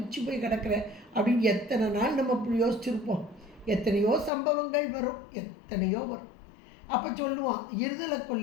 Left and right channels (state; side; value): drops out; right; at 4.3 s